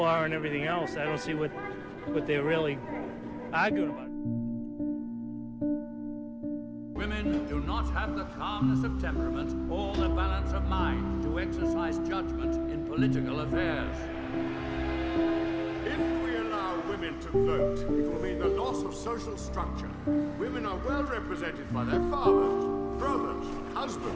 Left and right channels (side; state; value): both; identical; correlation 1.00